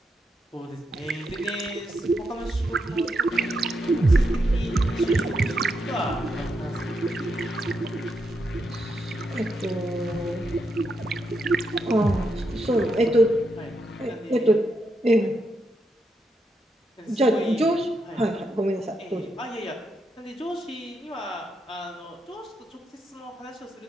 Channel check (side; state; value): both; normal; correlation 0.82